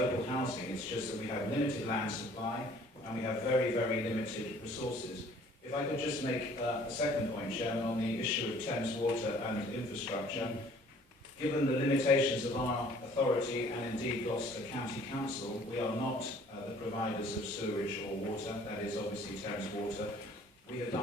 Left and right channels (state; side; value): normal; both; correlation 0.55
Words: housing. It's just that we have limited land supply and we have very, very limited resources. If I could just make a second point, Chairman, on the issue of Thames Water and infrastructure. Given the limitations of our authority and indeed Gloucester County Council, we are not the providers of sewerage or water, that is obviously Thames Water. We have